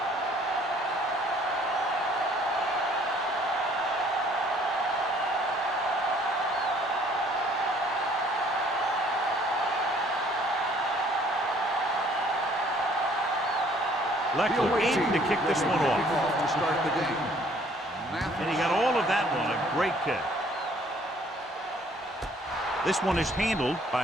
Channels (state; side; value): normal; both; correlation 0.59